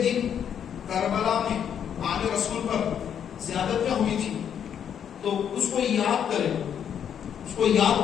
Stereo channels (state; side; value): quieter; right; 8.6 dB